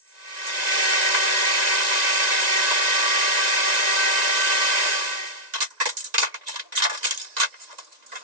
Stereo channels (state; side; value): late; left; 1.9 ms